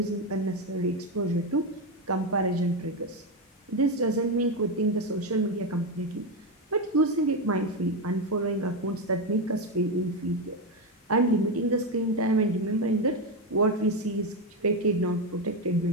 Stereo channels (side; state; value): both; normal; correlation 0.10